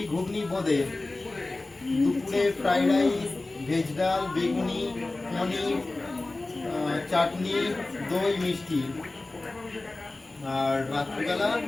ঘুগনি বোঁদে। দুপুরে ফ্রাইড রাইস ভেজ ডাল বেগুনি পনির চাটনি দই মিষ্টি। আর রাত্রিবেলা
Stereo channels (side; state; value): right; quieter; 3.1 dB